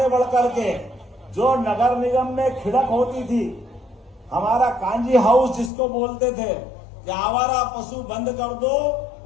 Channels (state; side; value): drops out; right; at 5.7 s